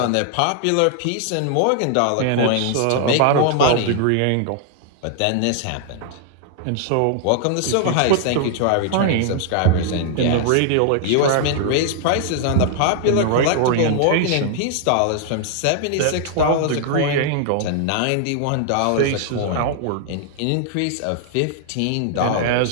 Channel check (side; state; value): both; different; correlation 0.00